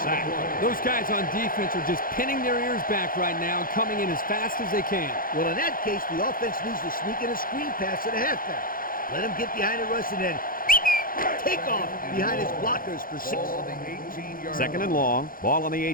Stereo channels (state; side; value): late; right; 0.41 ms